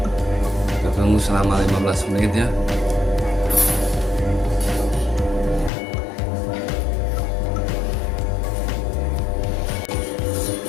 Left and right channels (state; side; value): drops out; right; at 5.7 s